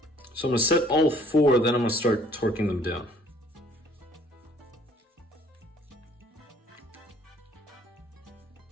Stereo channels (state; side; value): normal; both; correlation 0.58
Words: So I'm going to set all 4, then I'm going to start torquing them down.